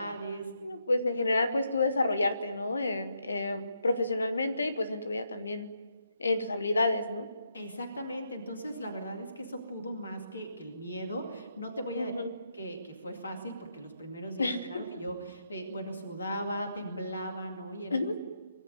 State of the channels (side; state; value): both; inverted; correlation -0.79